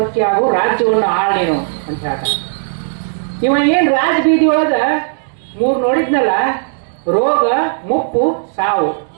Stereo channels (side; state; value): left; silent; digital silence